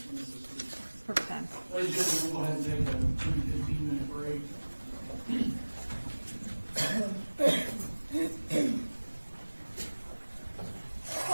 perfect time. Ladies and gentlemen, we'll go ahead and take a 15-minute break.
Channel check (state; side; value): inverted; both; correlation -1.00